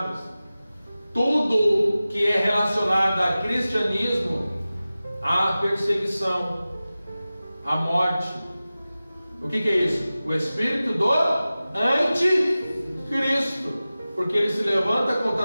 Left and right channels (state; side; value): inverted; both; correlation -0.96